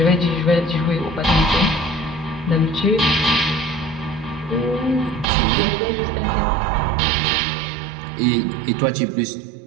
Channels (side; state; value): left; drops out; at 5.2 s